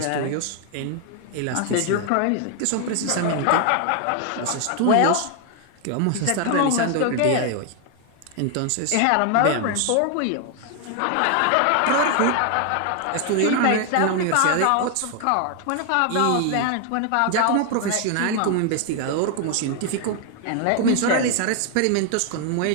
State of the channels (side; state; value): both; different; correlation 0.00